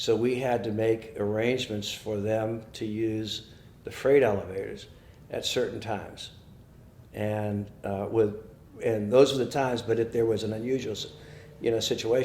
we had to make arrangements for them to use the freight elevators at certain times. And those were the times, but if there was an unusual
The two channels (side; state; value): both; identical; correlation 1.00